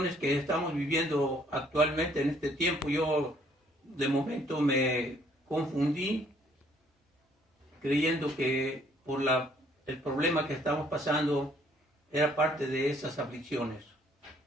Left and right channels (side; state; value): both; normal; correlation 0.63